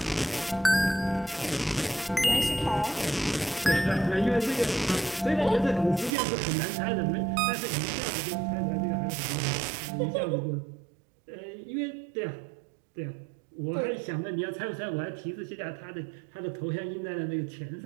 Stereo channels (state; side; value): drops out; left; at 6.1 s